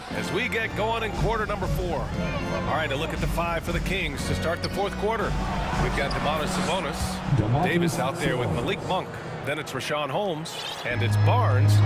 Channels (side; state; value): both; identical; correlation 1.00